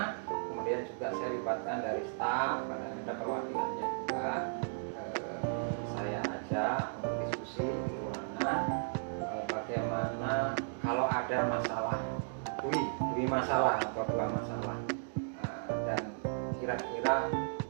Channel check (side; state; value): left; silent; digital silence